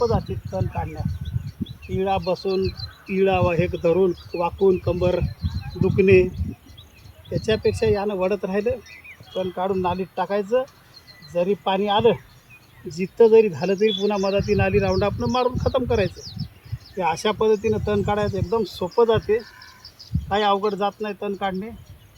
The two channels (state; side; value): identical; both; correlation 1.00